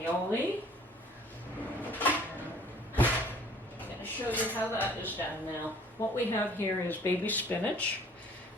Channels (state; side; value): normal; both; correlation 0.54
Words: I'm going to show you how that is done now. What we have here is baby spinach,